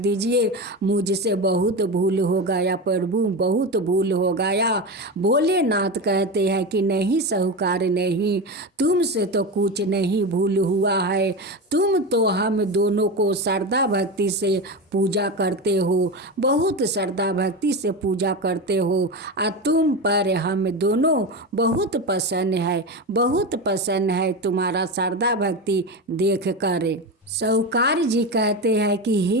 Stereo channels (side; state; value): both; normal; correlation 0.21